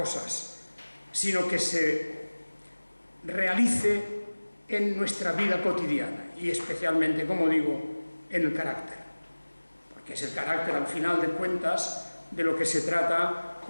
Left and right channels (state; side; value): inverted; both; correlation -1.00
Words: sino que se realice en nuestra vida cotidiana y especialmente, como digo, en el carácter. Que es el carácter, al final de cuentas, de lo que se trata